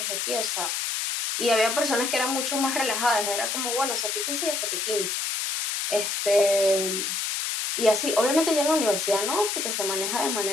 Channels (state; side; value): noise; left; hiss, 1 dB below the sound